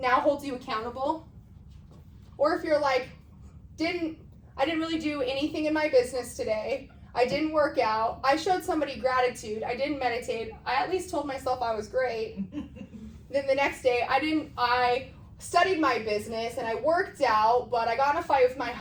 holds you accountable? Or if you're like, I didn't really do anything in my business today. I didn't work out. I showed somebody gratitude. I didn't meditate. I at least told myself I was great. Then the next day, I studied my business and I worked out, but I got in a fight with my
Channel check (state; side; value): identical; both; correlation 1.00